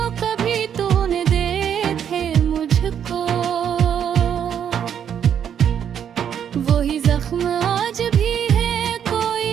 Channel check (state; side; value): quieter; left; 8.7 dB